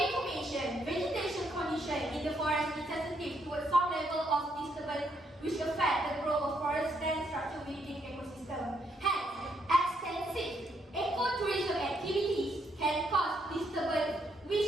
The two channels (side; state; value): both; normal; correlation 0.75